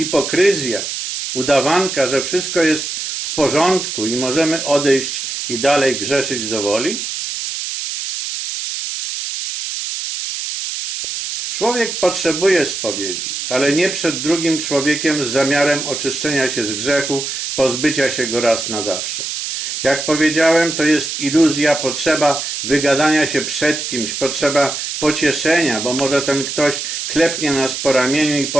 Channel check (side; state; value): right; noise; hiss, 4 dB below the sound